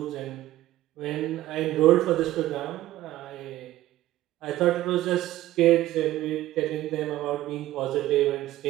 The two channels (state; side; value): quieter; left; 15.1 dB